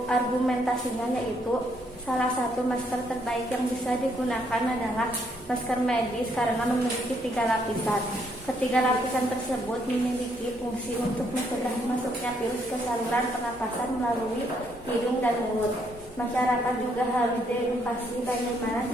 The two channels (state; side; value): normal; both; correlation 0.72